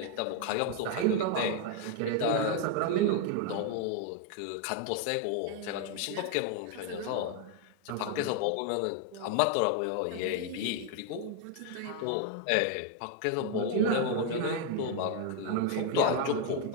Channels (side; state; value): both; different; correlation 0.01